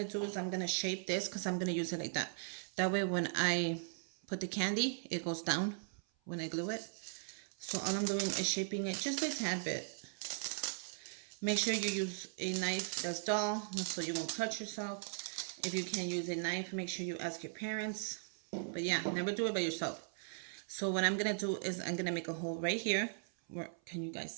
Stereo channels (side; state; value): left; silent; 52 dB below the other